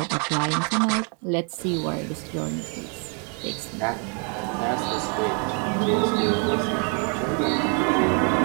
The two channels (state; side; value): quieter; left; 39.8 dB